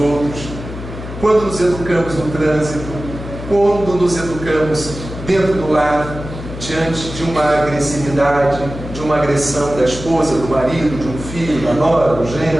quando nos educamos no trânsito, quando nos educamos dentro do lar, diante de uma agressividade, de uma agressão da esposa, do marido, de um filho, da nora, do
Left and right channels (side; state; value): left; noise; hum, 10 dB below the sound